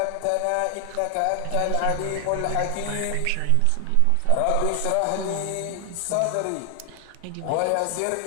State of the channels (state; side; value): different; both; correlation 0.00